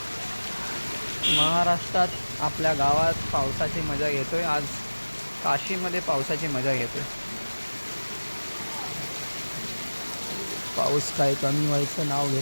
महाराष्ट्रात आपल्या गावात पावसाची मजा घेतोय. आज काशीमध्ये पावसाची मजा घेतोय. पाऊस काही कमी व्हायचं नाव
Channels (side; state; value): both; inverted; correlation -1.00